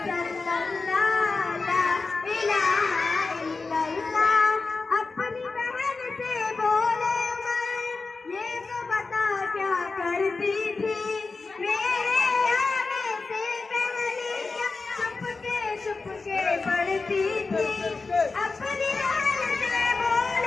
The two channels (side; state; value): right; quieter; 4.0 dB